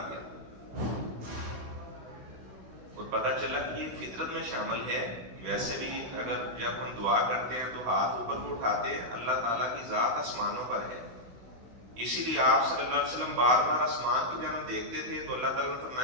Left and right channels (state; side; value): late; left; 16 ms